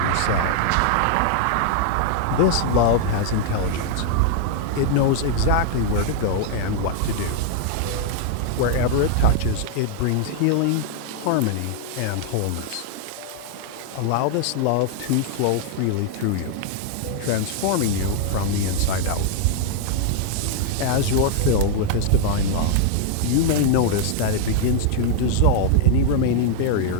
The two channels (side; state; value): both; different; correlation 0.00